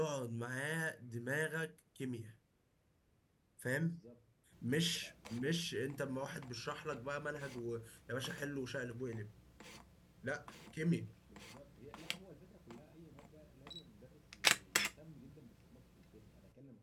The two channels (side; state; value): both; identical; correlation 1.00